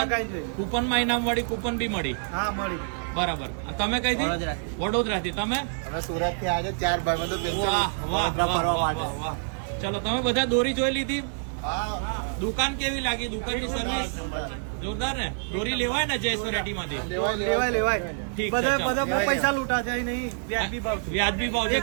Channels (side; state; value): left; silent; 60 dB below the other